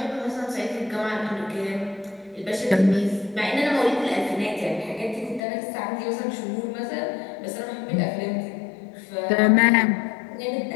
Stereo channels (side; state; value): right; drops out; at 5.4 s